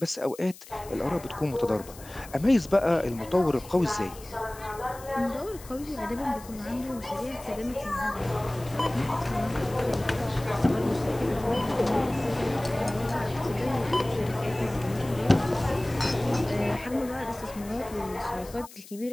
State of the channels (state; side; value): noise; left; hiss, 19 dB below the sound